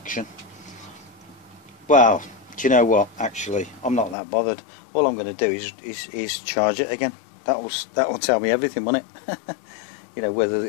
Well, do you know what? Actually, I'm not that bothered. All I'm going to do is charge it again. That will tell me everything, won't it? you know, whether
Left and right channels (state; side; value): drops out; right; at 4.2 s